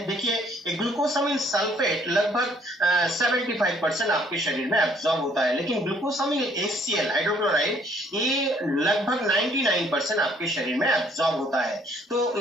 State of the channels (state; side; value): normal; both; correlation 0.62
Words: देखिए ग्लूकोसामिन सल्फेट लगभग 75% आपके शरीर में एब्जॉर्ब होता है, लेकिन ग्लूकोसामिन HCl हाइड्रोक्लोराइड ये लगभग 99% आपके शरीर में एब्जॉर्ब होता है। तो